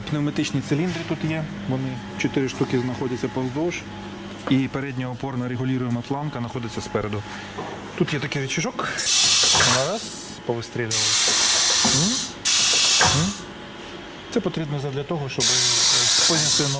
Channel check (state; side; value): identical; both; correlation 1.00